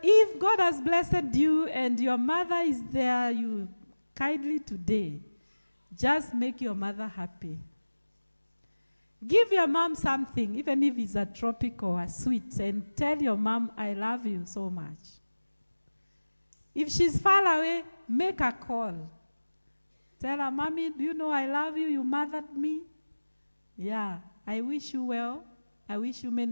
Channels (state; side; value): inverted; both; correlation -1.00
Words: if God has blessed you and your mother is there, you kindly today, just make your mother happy. Give your mom something, even if it's a tropic or a sweet, and tell your mom, I love you so much. If she's far away, make a call. Tell her, Mommy, do you know I love you? You mothered me. Yeah, I wish you well. I wish you